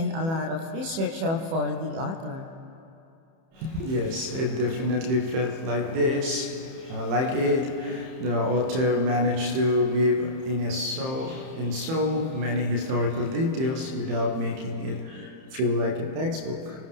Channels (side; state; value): left; late; 31 ms